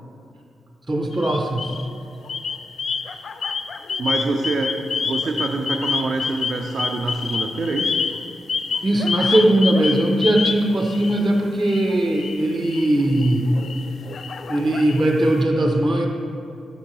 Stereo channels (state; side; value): normal; both; correlation 0.89